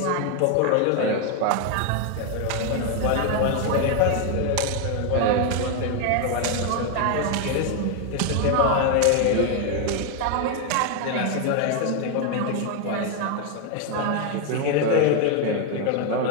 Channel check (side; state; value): both; different; correlation 0.01